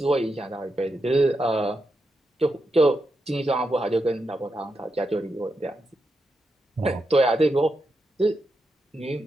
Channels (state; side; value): normal; both; correlation 0.85